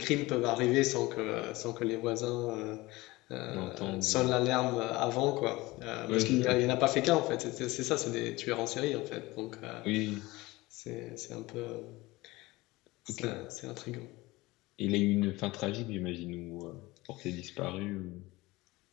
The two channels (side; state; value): right; quieter; 20.6 dB